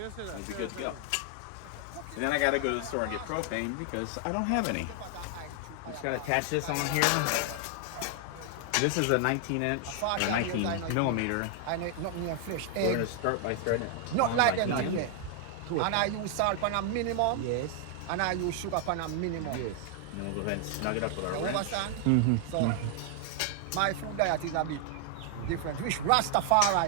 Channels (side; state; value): both; different; correlation 0.00